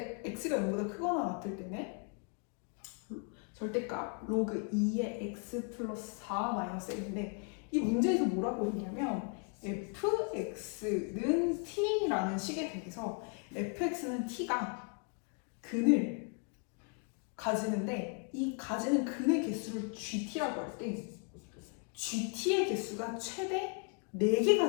x가 0보다 크거나 같을 때는 절대값 로그 2의 x 플러스 4 마이너스 n인데, 이 문제에서 뭐라고 했냐면 fx는 t라는 식에 대해서 fx는 t가 근을 가지는데, 이 가지는 근의 개수를 gt라고 할 때 gt의 개수가 최대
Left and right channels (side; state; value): right; quieter; 39.7 dB